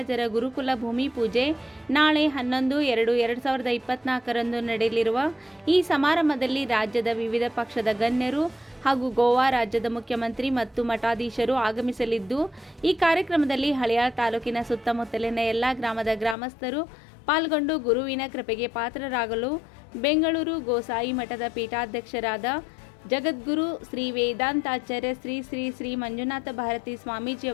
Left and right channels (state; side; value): drops out; right; at 16.4 s